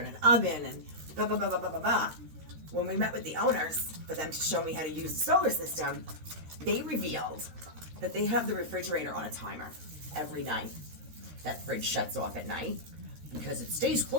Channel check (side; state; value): left; late; 13 ms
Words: an oven and blah, blah, blah, blah, blah, blah, blah. When we met with the owners for them to show me how to use the solar system, they revealed that they have the refrigerator on a timer every night. That fridge shuts off at night because it stays